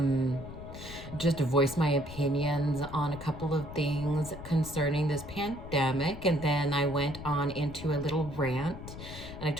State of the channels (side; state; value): left; noise; rumble, 12 dB below the sound